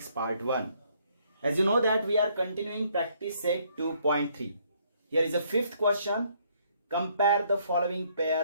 part 1. As you know that we are continuing practice set 2.3. Here is a fifth question. Compare the following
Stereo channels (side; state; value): both; inverted; correlation -0.67